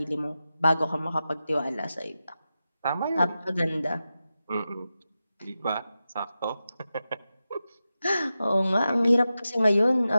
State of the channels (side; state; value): both; inverted; correlation -0.92